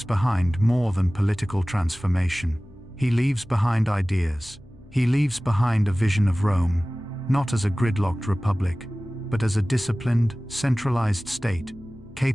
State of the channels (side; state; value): right; noise; hum, 25 dB below the sound